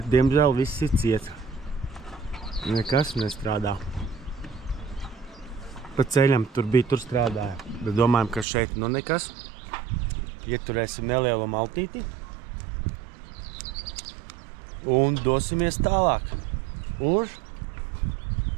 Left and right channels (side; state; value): left; drops out; at 8.5 s